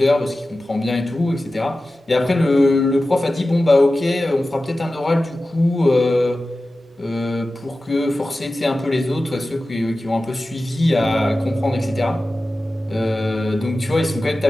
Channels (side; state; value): both; normal; correlation 0.95